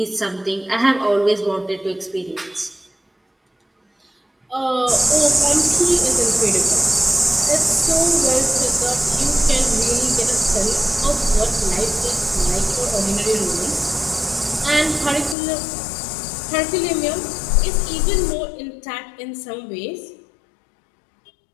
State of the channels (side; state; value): right; drops out; at 15.4 s